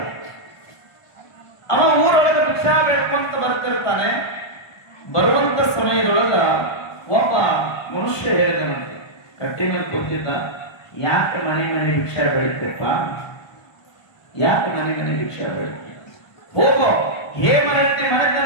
ಅವ ಊರೊಳಗೆ ಭಿಕ್ಷಾ ಬೇಡ್ಕೊಂತ ಬರ್ತಿರ್ತಾನೆ. ಬರುವಂತ ಸಮಯದೊಳಗ ಒಬ್ಬ ಮನುಷ್ಯ ಹೇಳಿದನಂತೆ, ಕಟ್ಟಿ ಮೇಲೆ ಕೂತಿದ್ದ, ಯಾಕೆ ಮನೆ ಮನೆ ಭಿಕ್ಷಾ ಬೆಳಿತಪ್ಪ, ಯಾಕೆ ಮನೆ ಮನೆ ಭಿಕ್ಷಾ ಬೆಳಿತ, ಹೋಗೋ ಹೇಮರಟ್ಟಿ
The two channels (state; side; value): late; right; 1.5 ms